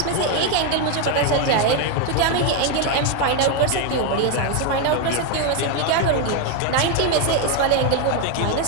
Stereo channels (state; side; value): different; both; correlation 0.02